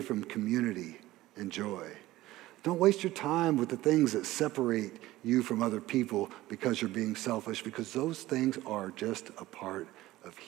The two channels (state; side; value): quieter; left; 16.8 dB